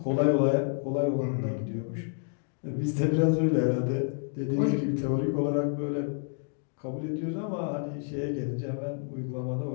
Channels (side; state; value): right; silent; 58 dB below the other